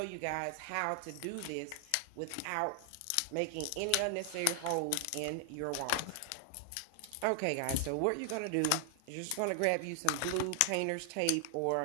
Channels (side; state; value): both; different; correlation 0.00